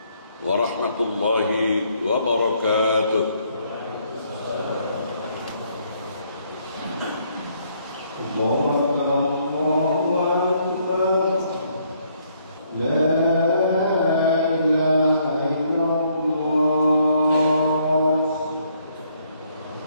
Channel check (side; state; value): both; inverted; correlation -0.69